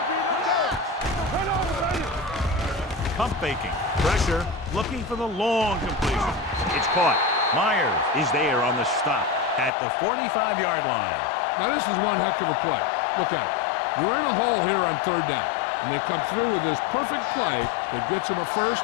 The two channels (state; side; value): drops out; right; at 9.7 s